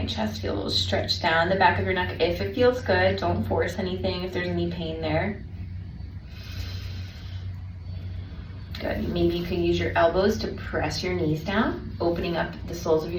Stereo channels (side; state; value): both; identical; correlation 1.00